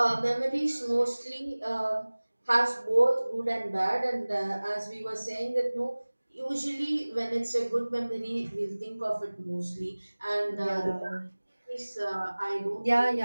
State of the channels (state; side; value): inverted; both; correlation -1.00